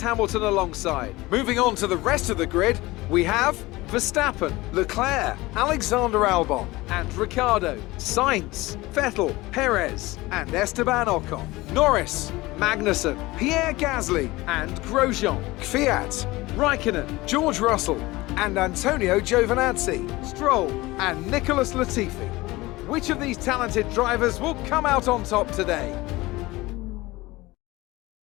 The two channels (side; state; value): right; quieter; 20.2 dB